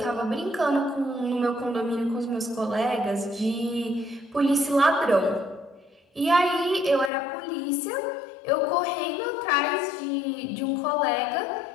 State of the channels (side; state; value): right; drops out; at 7.1 s